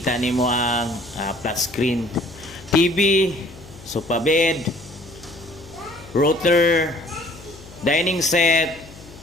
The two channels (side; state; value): left; noise; hum, 19 dB below the sound